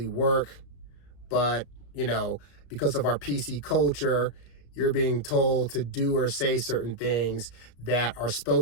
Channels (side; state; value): right; late; 34 ms